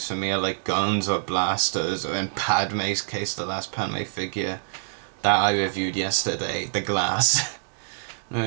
for me are like guns or blasters, or in Padme's case, the last Padme figure that I reviewed yesterday, the glass.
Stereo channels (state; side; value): silent; left; digital silence